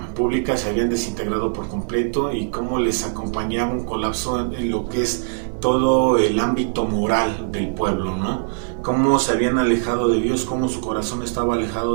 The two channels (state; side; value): silent; left; digital silence